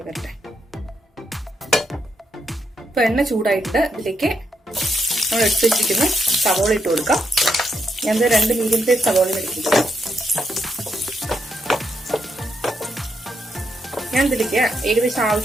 വരട്ടെ. ഇപ്പൊ എണ്ണ ചൂടായിട്ട് ഇതിലേക്ക് നമ്മൾ എടുത്ത് വെച്ചിരിക്കുന്ന സവോള ഇട്ട് കൊടുക്കാം. ഞാൻ 2 മീഡിയം സൈസ് സവോള എടുത്തിട്ടുണ്ട്. ഞാൻ ഇതിലേക്ക് ഏകദേശം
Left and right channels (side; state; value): both; normal; correlation 0.79